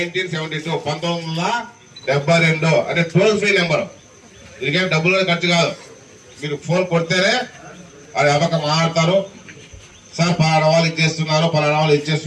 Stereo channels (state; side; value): identical; both; correlation 1.00